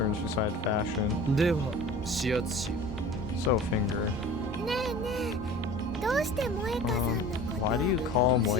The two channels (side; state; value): both; normal; correlation 0.40